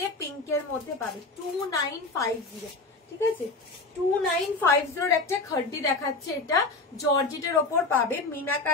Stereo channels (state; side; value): quieter; right; 3.5 dB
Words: পিঙ্কের মধ্যে পাবে 2950, ঠিক আছে। 2950 একটা খাড্ডি দেখাচ্ছে, এটা জর্জেটের ওপর পাবে,